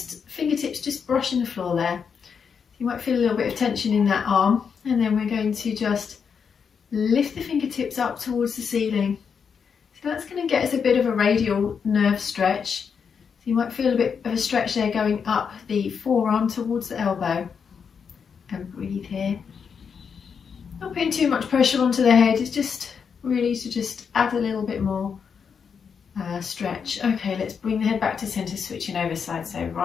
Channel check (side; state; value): right; quieter; 6.5 dB